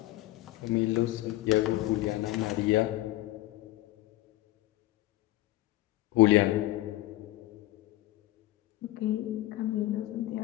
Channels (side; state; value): right; quieter; 16.9 dB